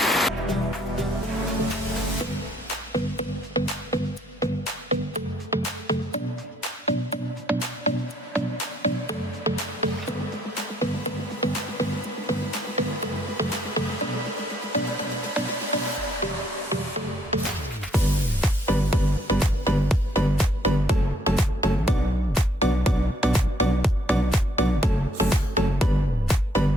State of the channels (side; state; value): both; normal; correlation 0.68